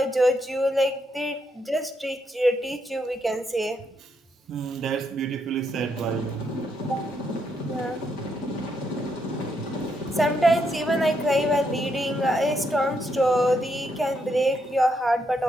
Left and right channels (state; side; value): normal; both; correlation 0.78